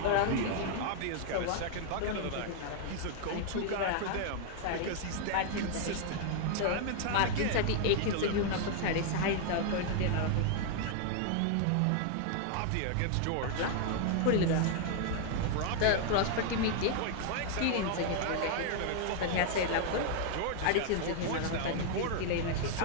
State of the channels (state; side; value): different; both; correlation 0.00